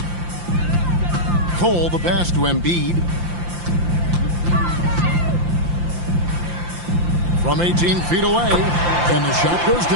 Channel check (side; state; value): left; late; 5.8 ms